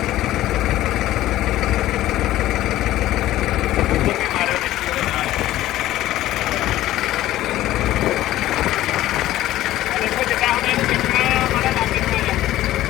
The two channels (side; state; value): right; quieter; 14.7 dB